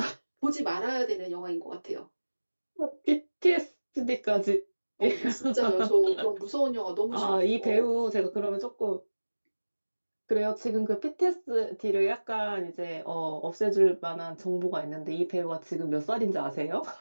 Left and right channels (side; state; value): both; inverted; correlation -1.00